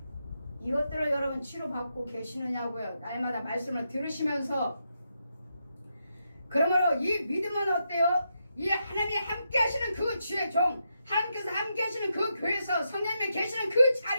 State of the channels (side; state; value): both; inverted; correlation -0.83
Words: 이것들을 여러분 치료받고 계시느냐고요. 날마다 말씀을 들으시면서. 그러므로 이 믿음은 어때요? 이 하나님이 함께 하시는 그 주의 종, 하나님께서 함께 하시는 그 교회에서 성령님이 계시는 그